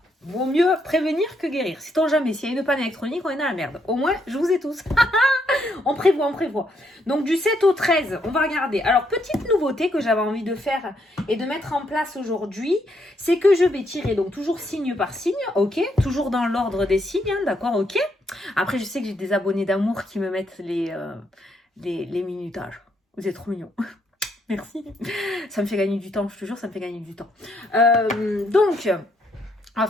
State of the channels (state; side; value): normal; both; correlation 0.75